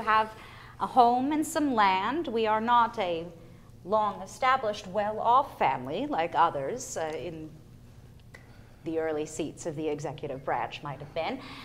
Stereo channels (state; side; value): identical; both; correlation 1.00